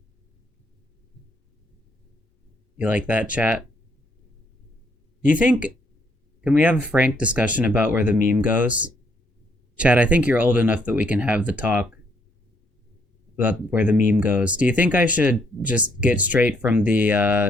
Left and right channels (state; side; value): normal; both; correlation 0.70